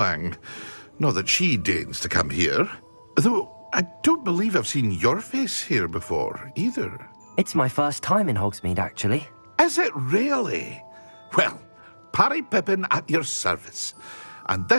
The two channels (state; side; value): inverted; both; correlation -1.00